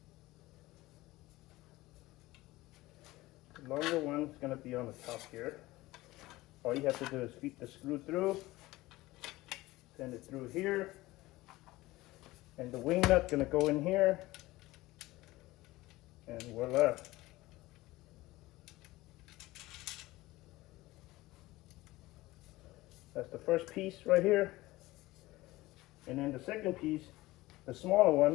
The longer one is going to be on the top here. All you have to do is feed the screw through, send it through here, and the wing nut going to go in here, And voila. That's the first piece right here. And then the second piece, the smaller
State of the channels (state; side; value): quieter; right; 18.8 dB